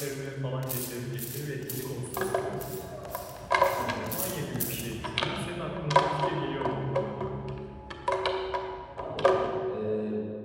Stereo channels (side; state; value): both; identical; correlation 1.00